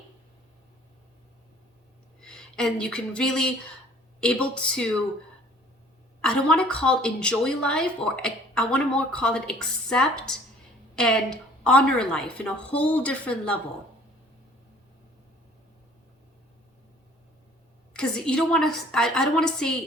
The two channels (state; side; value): normal; both; correlation 0.54